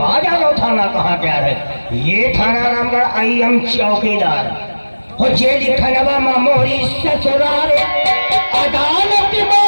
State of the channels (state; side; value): inverted; both; correlation -1.00